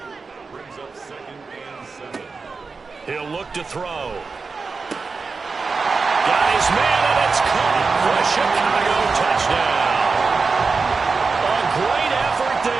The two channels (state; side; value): quieter; left; 4.5 dB